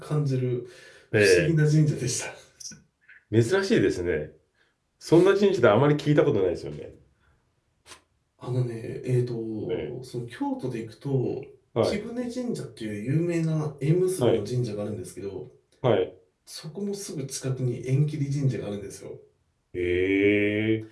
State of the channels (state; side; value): identical; both; correlation 1.00